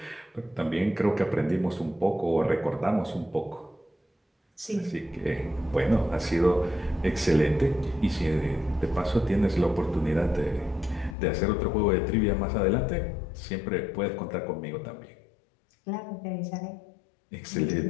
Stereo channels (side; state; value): right; drops out; at 11.2 s